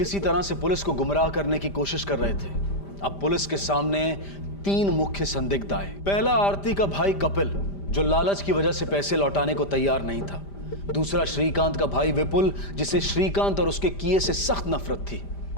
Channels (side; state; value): right; late; 5.0 ms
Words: तरह से पुलिस को गुमराह करने की कोशिश कर रहे थे। अब पुलिस के सामने 3 मुख्य संदिग्ध आए। पहला, आरती का भाई कपिल, जो लालच की वजह से पैसे लौटाने को तैयार नहीं था। दूसरा, श्रीकांत का भाई विपुल, जिसे श्रीकांत और उसके किए से सख्त नफरत थी।